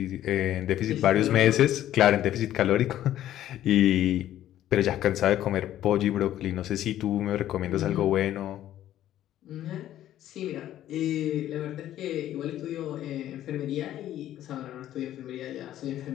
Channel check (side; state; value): right; quieter; 12.5 dB